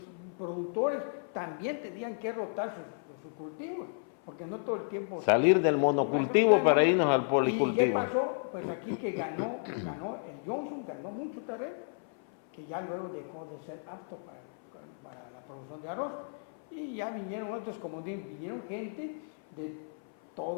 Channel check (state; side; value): silent; right; 56 dB below the other